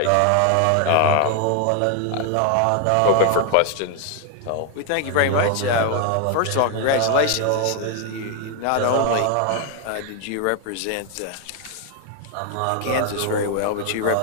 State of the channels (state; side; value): different; both; correlation 0.00